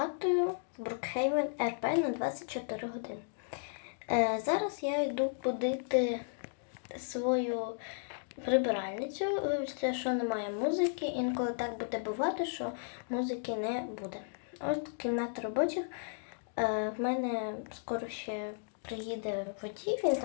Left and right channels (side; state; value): right; silent; digital silence